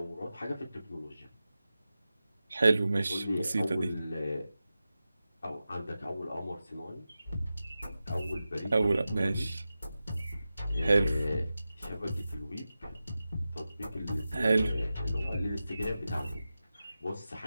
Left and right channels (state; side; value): inverted; both; correlation -0.93